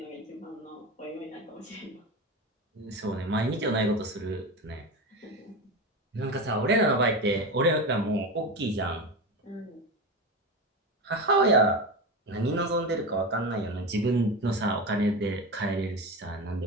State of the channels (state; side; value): normal; both; correlation 0.22